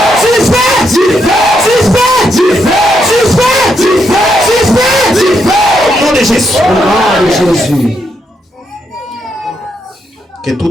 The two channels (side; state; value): both; normal; correlation 0.79